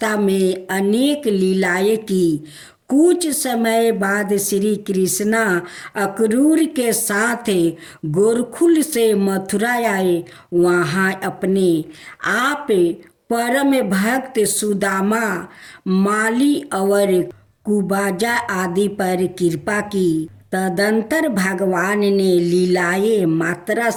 में अनेक लीलाएं की। कुछ समय बाद श्री कृष्णा अक्रूर के साथ गोरखुल से मथुरा आए। वहाँ अपने आप परम भक्त सुदामा, माली और कुबाजा आदि पर कृपा की। तदंतर भगवान ने लीलाएं मात्रा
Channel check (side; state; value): both; identical; correlation 1.00